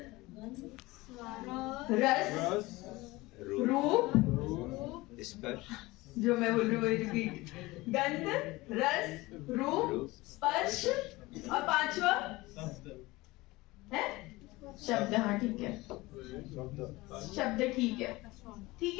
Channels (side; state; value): right; quieter; 20.8 dB